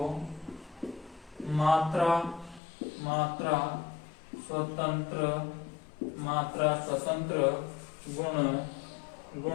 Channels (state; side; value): drops out; right; at 2.6 s